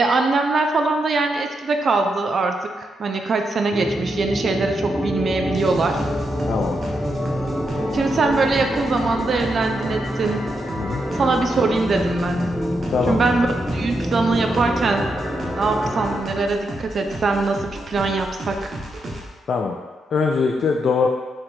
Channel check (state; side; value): normal; both; correlation 0.83